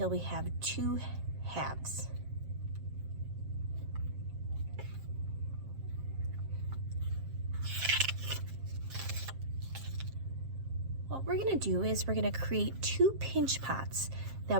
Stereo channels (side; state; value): left; late; 7.5 ms